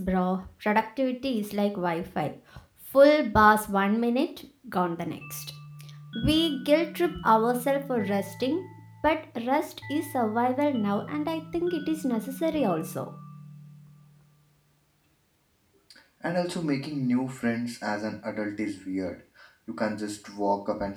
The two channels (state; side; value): identical; both; correlation 1.00